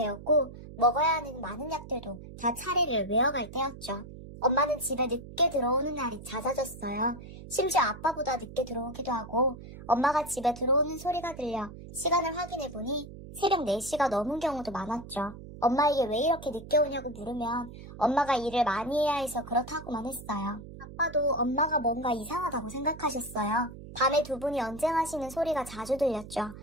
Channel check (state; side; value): noise; right; hum, 14 dB below the sound